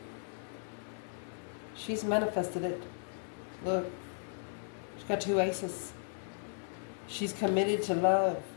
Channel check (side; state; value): right; silent; 54 dB below the other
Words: She's manifested it. Look, she's got 2 aces. She's committed to love.